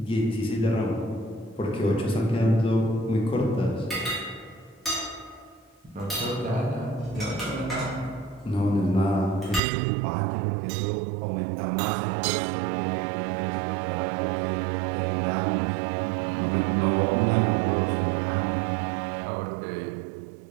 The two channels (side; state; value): left; drops out; at 9.6 s